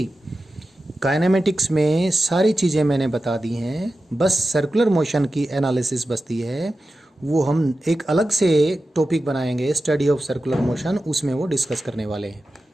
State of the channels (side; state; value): both; normal; correlation 0.93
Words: kinematics में सारी चीज़ें मैंने बता दी हैं, बस सर्कुलर मोशन की एनालिसिस बचती है। वो हम एक अलग से टॉपिक बनाएंगे, स्टडी ऑफ सर्कुलर मोशन, उसमें वो डिस्कस करने वाले हैं।